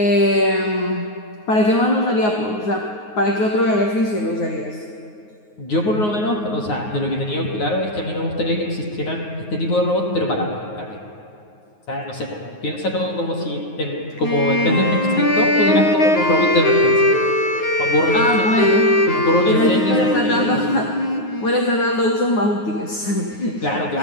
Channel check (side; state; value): right; late; 9.5 ms